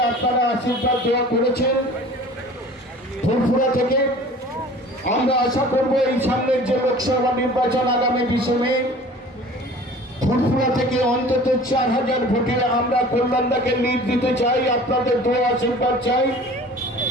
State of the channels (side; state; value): both; normal; correlation 0.45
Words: আপনারা আশীর্বাদ দেওয়া করেছেন ফুরফুরা থেকে। আমরা আশা করব এই সামনের যে লোকসভা নির্বাচন আগামী 20 মে ফুরফুরা থেকে অন্তত 4000 ভোটে আমরা কল্যাণদাকে লিড দিতে চাই। আপনাদের দোয়া আশীর্বাদ চাই।